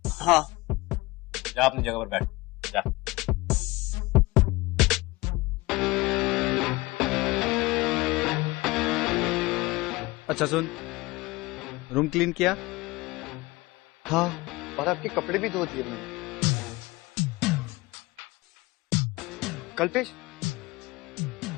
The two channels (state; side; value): quieter; right; 21.6 dB